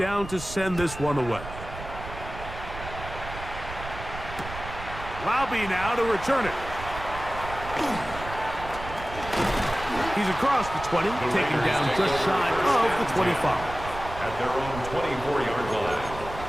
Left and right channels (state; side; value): noise; right; rumble, 11 dB below the sound